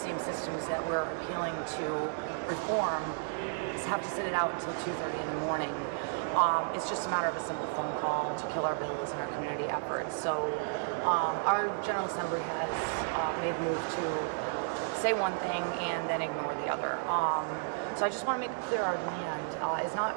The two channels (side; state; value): left; silent; digital silence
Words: systems that we're appealing to reform have to sit it out until 2:30 in the morning. It's just a matter of a simple phone call to kill our bills and our community efforts. So our General Assembly has made the move to say one thing and then ignore the other. So I just want to make it clear our demand is not